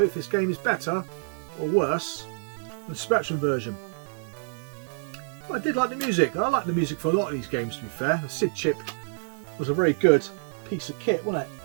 if this game is better or worse than the Spectrum version. But I did like the music. I like the music for a lot of these games, to be fair. The SID chip was a very good piece of kit, wasn't it?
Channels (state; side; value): silent; left; 60 dB below the other